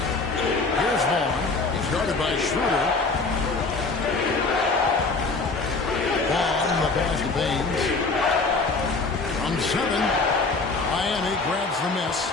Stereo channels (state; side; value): quieter; right; 3.9 dB